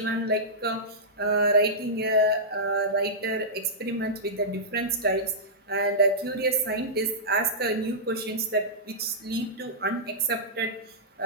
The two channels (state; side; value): normal; both; correlation -0.14